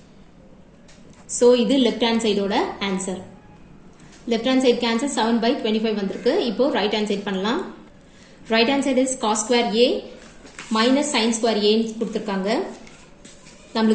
so இது left hand side ஓட answer left hand side cancel 7 by 25 வந்திருக்கு இப்போ right hand side பண்ணலாம் right hand side is cos square a minus sin square a ன்னு கொடுத்திருக்காங்க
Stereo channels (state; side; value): identical; both; correlation 1.00